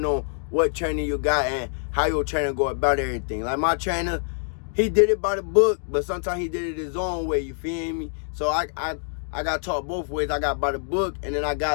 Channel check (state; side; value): silent; right; digital silence